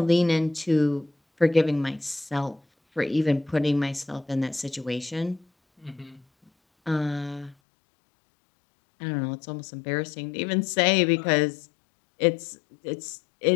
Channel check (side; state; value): right; drops out; at 7.6 s